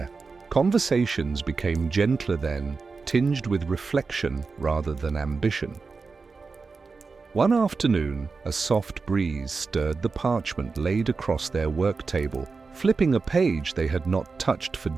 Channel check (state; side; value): quieter; left; 4.4 dB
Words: conversations became gentler then, tinged with reflection rather than ambition. One afternoon, a soft breeze stirred the parchment laid across their work table, flipping a page they had not touched for